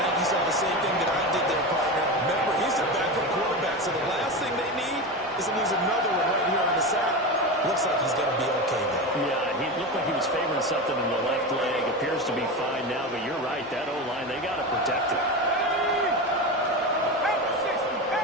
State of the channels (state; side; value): normal; both; correlation 0.22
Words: think you saw the same thing that I did there, partner. Remember, he's a backup quarterback, so the last thing they need is to lose another one right here on the sack. Looks like he's going to be okay, though. Yeah, he looked like he was favoring something in the left leg. Appears to be fine now, but you're right. That O-line, they got to protect it.